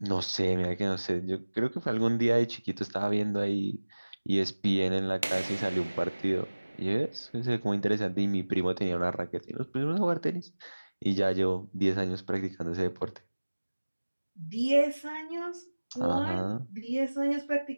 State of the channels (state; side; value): inverted; both; correlation -1.00